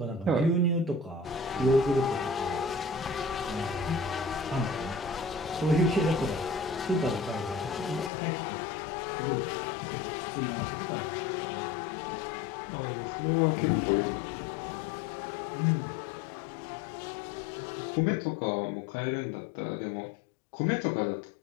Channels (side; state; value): right; drops out; at 8.1 s